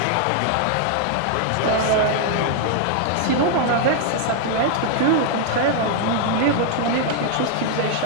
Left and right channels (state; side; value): different; both; correlation 0.00